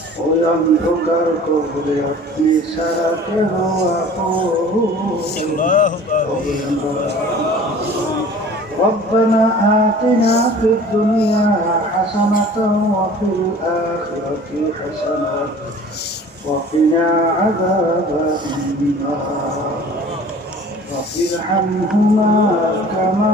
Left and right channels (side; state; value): both; normal; correlation 0.45